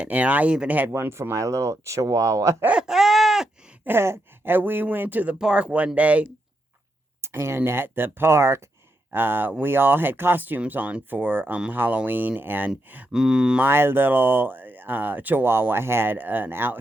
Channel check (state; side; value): normal; both; correlation 0.83